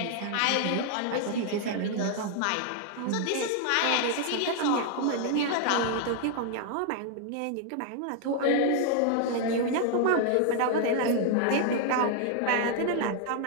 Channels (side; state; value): both; different; correlation 0.00